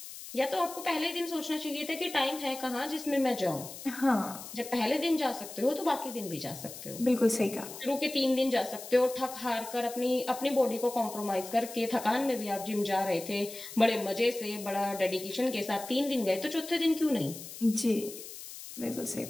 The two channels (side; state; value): left; noise; hiss, 12 dB below the sound